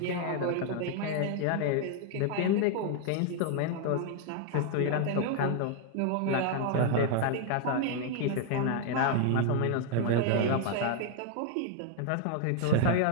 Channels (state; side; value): different; both; correlation 0.00